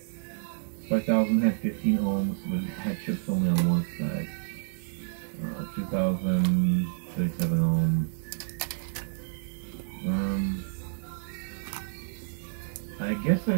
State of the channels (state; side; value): silent; left; digital silence